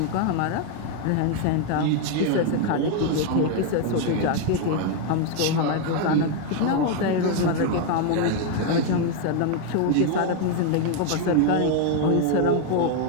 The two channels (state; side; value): different; both; correlation 0.01